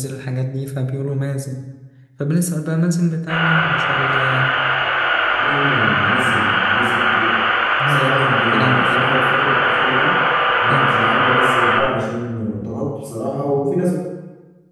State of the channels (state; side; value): identical; both; correlation 1.00